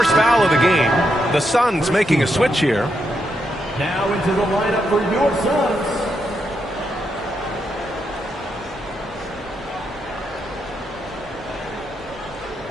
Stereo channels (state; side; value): normal; both; correlation 0.81